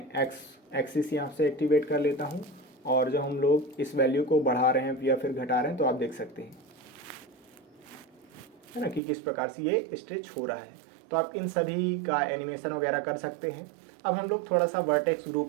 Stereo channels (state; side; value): drops out; left; at 9.0 s